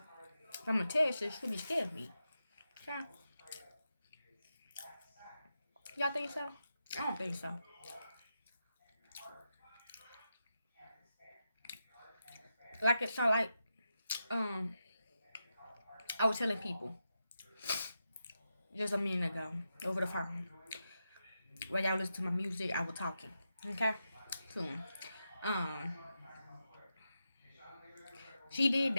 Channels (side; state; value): both; inverted; correlation -0.88